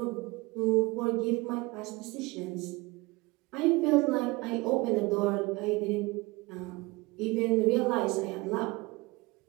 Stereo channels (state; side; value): quieter; left; 23.4 dB